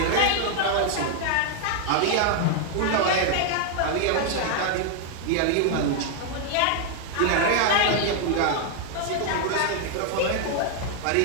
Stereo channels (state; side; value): different; both; correlation 0.00